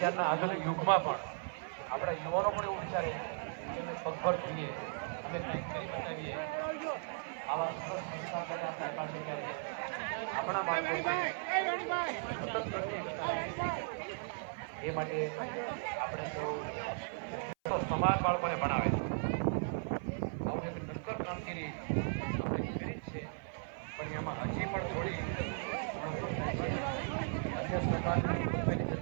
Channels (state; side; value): silent; left; 53 dB below the other